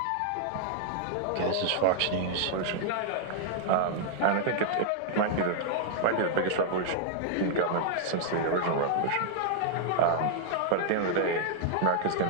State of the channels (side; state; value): both; different; correlation -0.01